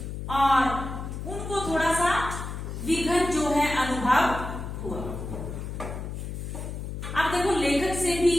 और उनको थोड़ा सा विघन जो है अनुभव हुआ। अब देखो, लेखक से भी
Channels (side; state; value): left; noise; hum, 7 dB below the sound